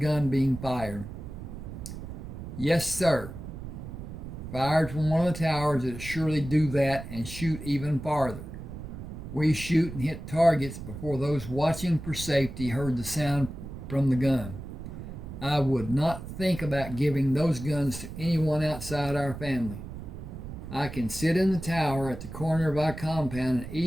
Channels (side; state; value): right; noise; rumble, 10 dB below the sound